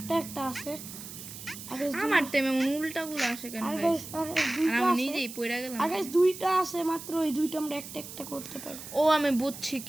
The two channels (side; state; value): right; noise; hiss, 12 dB below the sound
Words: আছে আর guys আমার টাইমে উল্টাগুলো আসে কেন আর গাইস গাইস আর দুইটা আমি আছে নিজেই পড়ে গেলাম আর গাইস দুইটা আছে মাত্র ওই দুইটা আমরা একটা করতে পারি ও আমি বুঝছি